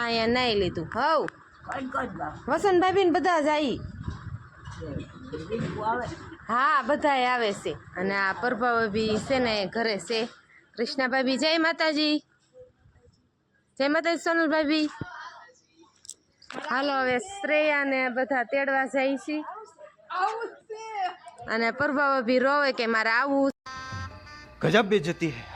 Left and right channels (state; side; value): identical; both; correlation 1.00